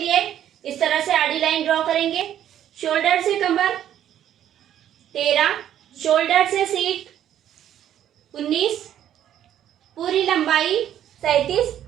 इस तरह से आड़ी लाइन ड्रॉ करेंगे। शोल्डर से कमर 13, शोल्डर से सीट 19, पूरी लंबाई 37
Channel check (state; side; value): quieter; left; 10.8 dB